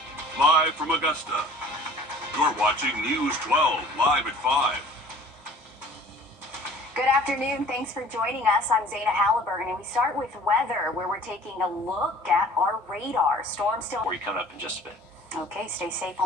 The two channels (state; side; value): normal; both; correlation 0.49